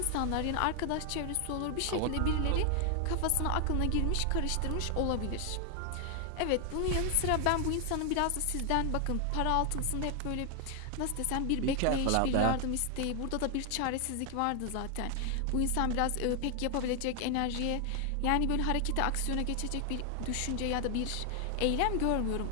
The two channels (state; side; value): different; both; correlation 0.00